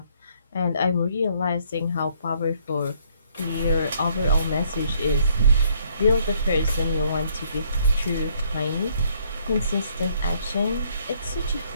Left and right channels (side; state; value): both; inverted; correlation -0.66